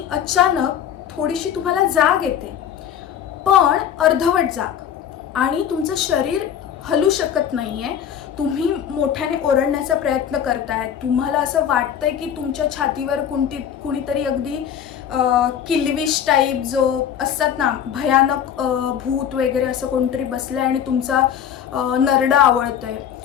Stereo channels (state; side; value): quieter; right; 9.1 dB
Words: अचानक थोडीशी तुम्हाला जाग येते, पण अर्धवट जाग, आणि तुमचं शरीर हलू शकत नाहीये. तुम्ही मोठ्याने ओरडण्याचा प्रयत्न करताय. तुम्हाला असं वाटतंय की तुमच्या छातीवर कुणीतरी अगदी किल्विश टाईप जो असतात ना, भयानक भूत वगैरे असं कोणतरी बसलंय आणि तुमचा नरडा आवळतोय.